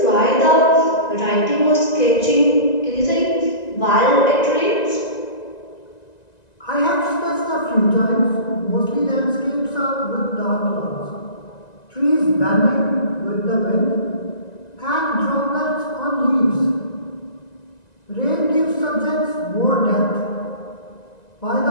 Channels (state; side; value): late; right; 1.9 ms